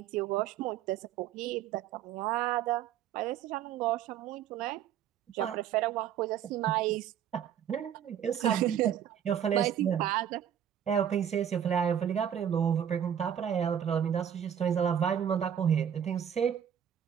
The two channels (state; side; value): quieter; left; 9.4 dB